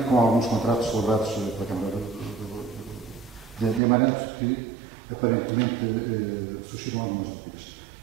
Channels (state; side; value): drops out; left; at 3.8 s